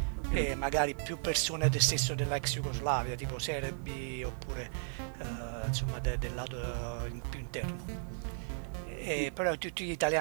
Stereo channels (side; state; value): left; silent; digital silence